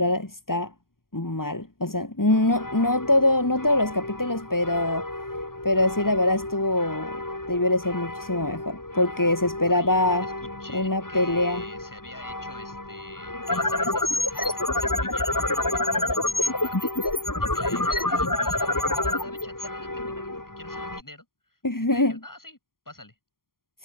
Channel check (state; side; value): late; right; 0.92 ms